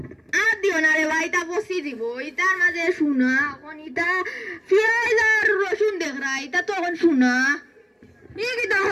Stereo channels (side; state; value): both; identical; correlation 1.00